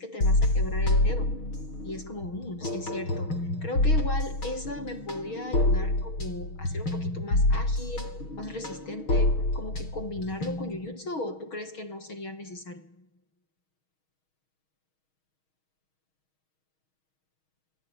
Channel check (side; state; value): right; late; 6.3 ms